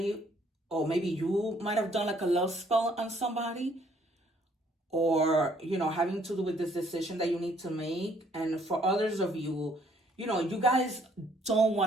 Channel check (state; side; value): normal; both; correlation 0.64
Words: or maybe you might have done like a love spell on somebody, or, you know, having to do with this decision that you need to make. And for others of you, you know, you guys don't